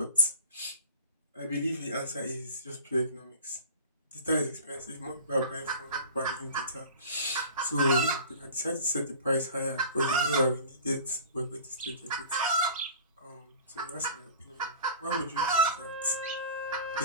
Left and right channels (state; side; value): inverted; both; correlation -0.42